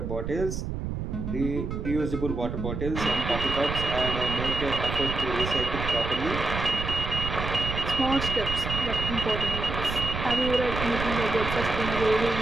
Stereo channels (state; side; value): noise; right; rumble, 5 dB below the sound